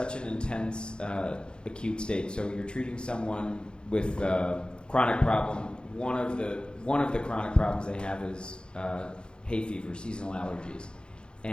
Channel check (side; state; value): right; late; 0.051 ms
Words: an intense acute state? So you're treating someone with a chronic problem. One of the chronic problems they have is hay fever, seasonal allergies.